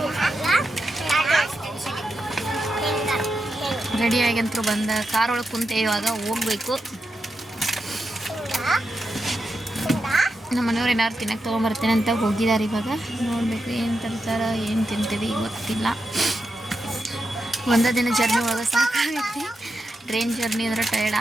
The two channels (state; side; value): normal; both; correlation 0.87